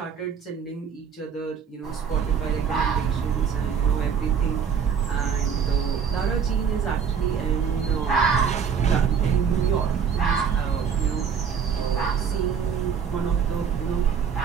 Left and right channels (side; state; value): left; quieter; 6.9 dB